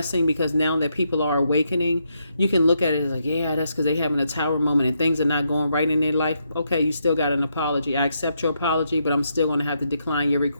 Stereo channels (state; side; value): inverted; both; correlation -0.79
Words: because now that people are awakening, you can look at it as like, yeah, that's because they're having a tower moment and things are not going right in their life. Okay, you still got an apology. I accept your apology, but I'm still going to have to decline your